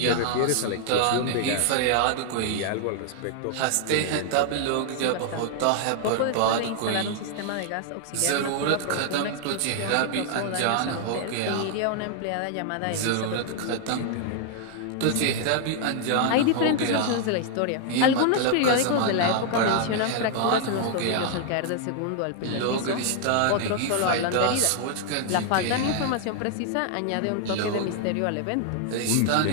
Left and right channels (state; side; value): different; both; correlation 0.00